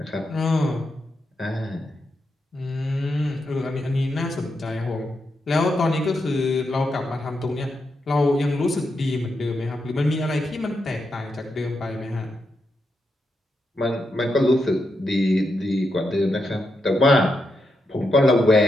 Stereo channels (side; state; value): both; normal; correlation 0.84